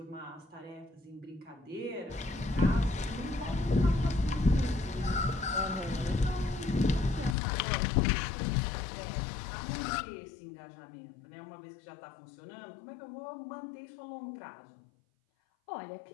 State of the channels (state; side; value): drops out; right; at 7.4 s